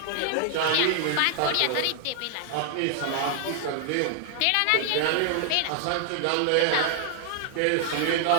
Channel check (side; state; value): both; different; correlation 0.00